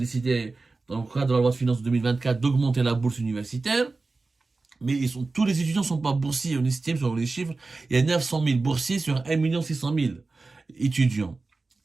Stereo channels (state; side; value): quieter; left; 3.7 dB